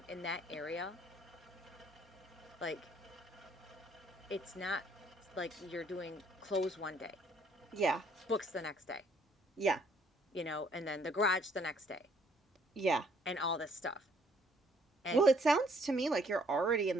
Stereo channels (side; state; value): both; normal; correlation 0.64